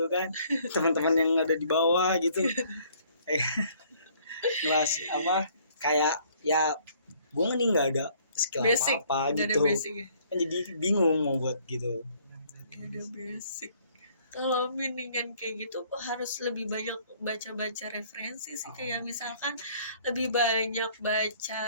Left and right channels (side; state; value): both; inverted; correlation -0.61